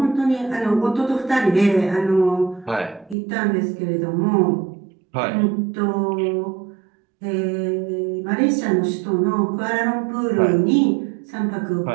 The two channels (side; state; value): left; drops out; at 3.2 s